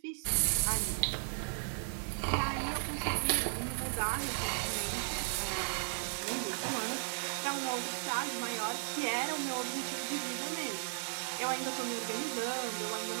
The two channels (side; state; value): left; silent; digital silence